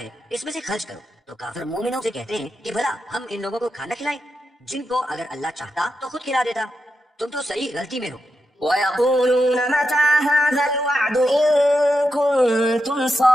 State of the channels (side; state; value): both; normal; correlation 0.87